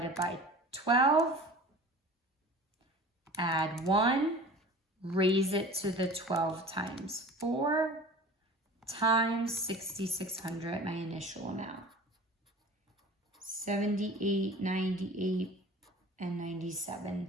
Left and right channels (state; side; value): normal; both; correlation 0.41